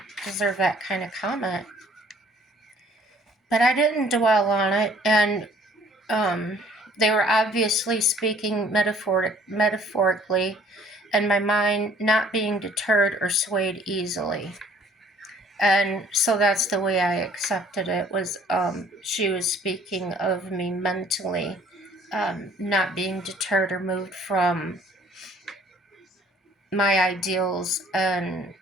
deserve that kind of comment? But I didn't dwell on it, and they were obviously speaking metaphorically, and my mind not being deterred or swayed easily. And so that's the way I accepted it, was she was speaking of me mentally, not being deterred or moved from my ideals and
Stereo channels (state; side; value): normal; both; correlation 0.57